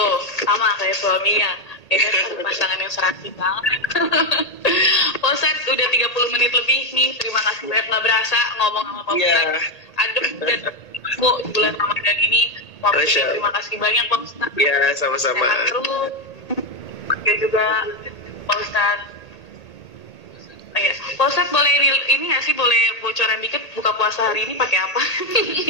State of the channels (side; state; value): right; late; 1.8 ms